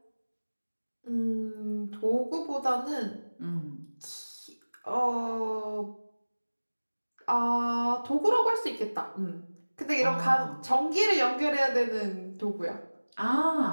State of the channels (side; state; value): both; inverted; correlation -1.00